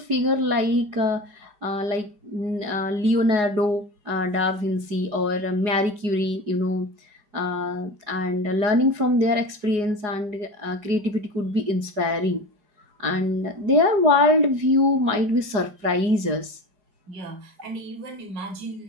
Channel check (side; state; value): left; late; 4.8 ms